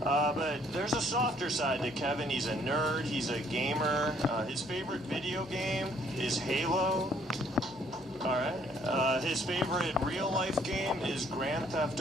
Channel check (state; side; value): normal; both; correlation 0.63